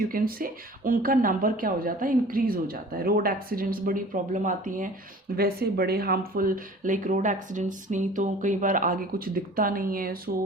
कैन से, उनका नंबर क्या हो जाता है, इंक्रीज हो जाता है। रोड एक्सीडेंट्स बड़ी प्रॉब्लम आती हैं, वैसे बड़े हार्मफुल, लाइक रोड एक्सीडेंट्स नहीं तो कई बार आगे कुछ दिखता नहीं है,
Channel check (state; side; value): normal; both; correlation 0.45